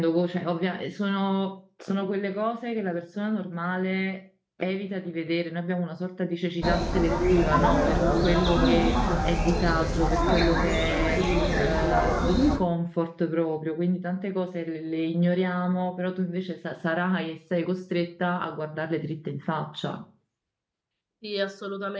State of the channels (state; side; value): identical; both; correlation 1.00